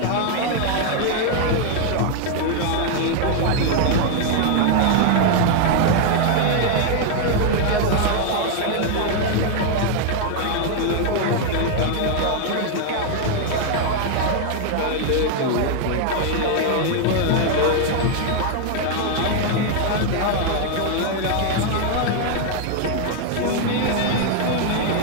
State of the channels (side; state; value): both; different; correlation 0.00